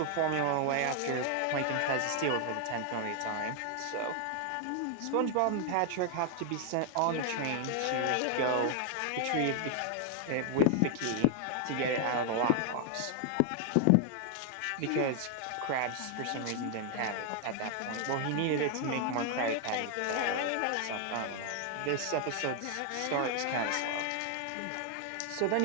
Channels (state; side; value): different; both; correlation 0.00